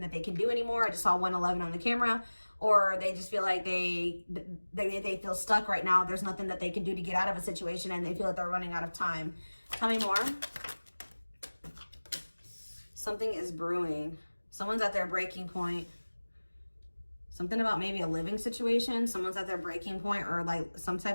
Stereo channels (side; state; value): both; inverted; correlation -1.00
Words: that they can do anymore. I just saw 111 on the camera. Or they just feel like they feel stuck right now. There's nothing that they can do to get out of a situation and they feel like they're running out of time. Tell me more. Something is brewing. Someone's at their breaking point. Something about maybe a living situation. Someone's at their breaking point or like